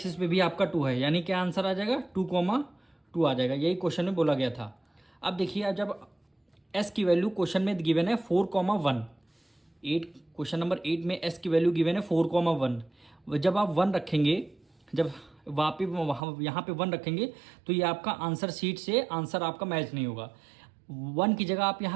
पे भी आपका 2 है। यानी क्या आंसर आ जाएगा, 2,2 आ जाएगा। यही क्वेश्चन में बोला गया था। अब देखिए जब S की वैल्यू क्वेश्चन में गिवन है 4,1, 8 क्वेश्चन नंबर 8 में S की वैल्यू गिवन है 4,1। जब आप 1 रखेंगे, जब वहाँ यहाँ पे 1 रखेंगे तो ये आपका आंसर शीट से आंसर आपका मैच नहीं होगा। 1 की जगह आप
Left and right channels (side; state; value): left; drops out; at 16.2 s